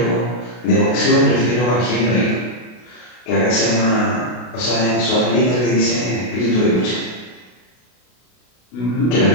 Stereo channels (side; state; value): right; late; 32 ms